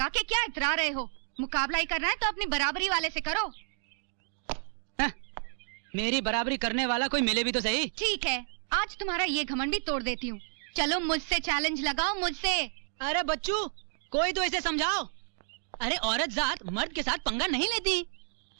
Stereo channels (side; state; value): left; silent; 57 dB below the other